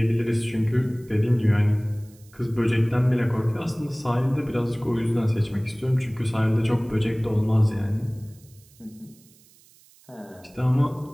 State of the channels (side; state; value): right; noise; hiss, 28 dB below the sound